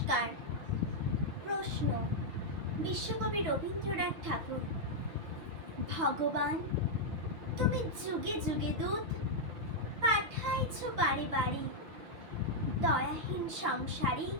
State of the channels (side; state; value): left; late; 6.1 ms